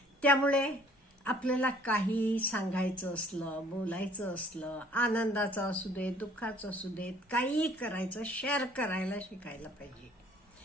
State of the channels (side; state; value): both; normal; correlation 0.56